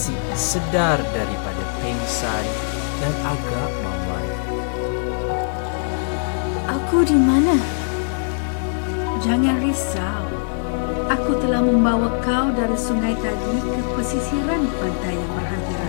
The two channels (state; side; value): silent; right; 63 dB below the other